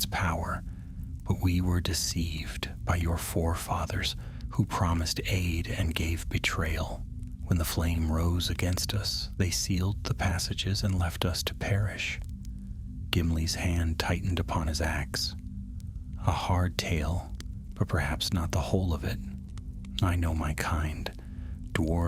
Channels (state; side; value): identical; both; correlation 1.00